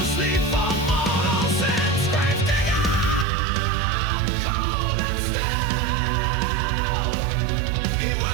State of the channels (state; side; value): drops out; left; at 3.2 s